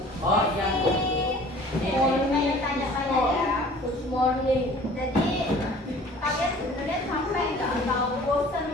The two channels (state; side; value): normal; both; correlation 0.48